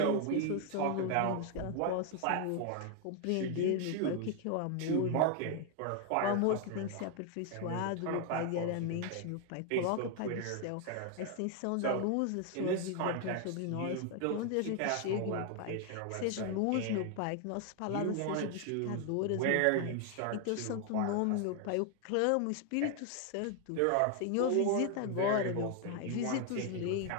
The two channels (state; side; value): different; both; correlation 0.00